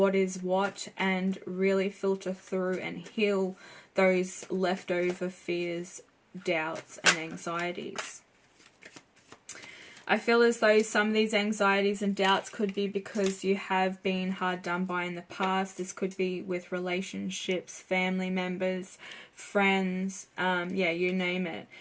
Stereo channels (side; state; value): both; identical; correlation 1.00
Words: is what and really filter through and heal those leftover fears, doubts and anxieties. I feel as though some of these anxieties and doubts could be because you have been hard done by in the past. This could be with relationships, family members, friends, yeah, you name it.